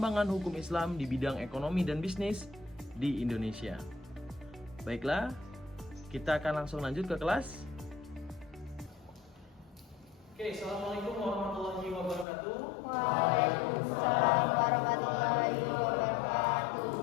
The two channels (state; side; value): drops out; right; at 12.2 s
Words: hukum Islam di bidang ekonomi dan bisnis di Indonesia. Baiklah, kita akan langsung lanjut ke kelas. Oke, Assalamualaikum warahmatullahi wabarakatuh. Waalaikumsalam warahmatullahi wabarakatuh.